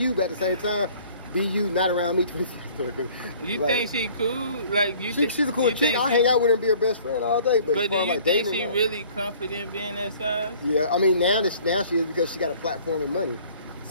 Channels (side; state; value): both; inverted; correlation -0.53